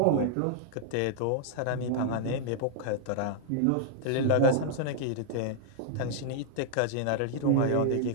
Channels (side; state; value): both; different; correlation -0.01